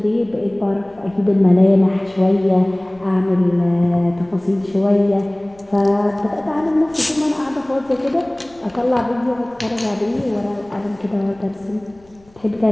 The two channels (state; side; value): noise; left; rumble, 29 dB below the sound